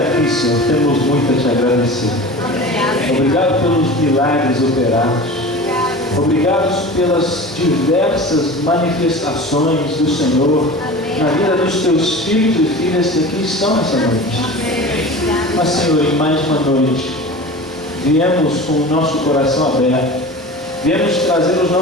Senhor, temos muito a Te agradecer. Obrigado pelos milagres operados. Obrigado pelas diversas manifestações do Senhor na vida dos Teus filhos e filhas que aqui estão essa noite. Mas, Senhor, em mais uma noite, viemos com o nosso coração aberto, viemos trazer os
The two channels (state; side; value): normal; both; correlation 0.35